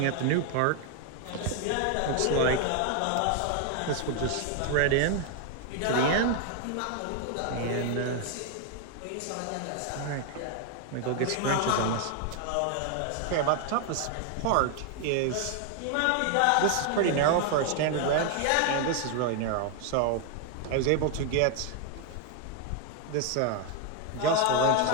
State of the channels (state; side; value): different; both; correlation 0.01